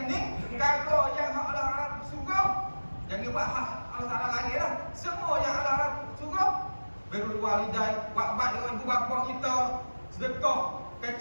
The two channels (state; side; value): inverted; both; correlation -1.00